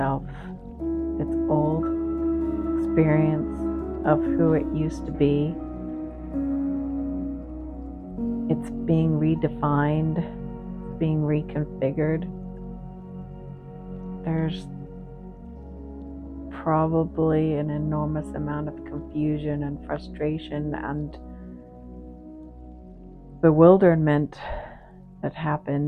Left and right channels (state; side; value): identical; both; correlation 1.00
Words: its old experience of who it used to be. It's being redefined, it's being reconfigured. There's probably an enormous amount of confusion and frustration and bewilderment that